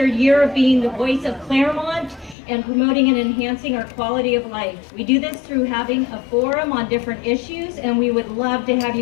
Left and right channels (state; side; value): drops out; right; at 2.4 s